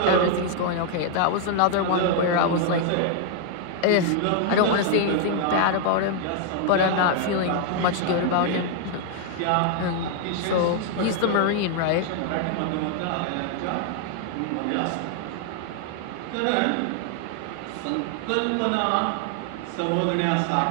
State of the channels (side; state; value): both; different; correlation 0.00